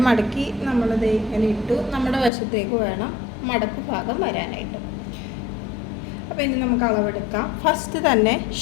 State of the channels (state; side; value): drops out; right; at 2.3 s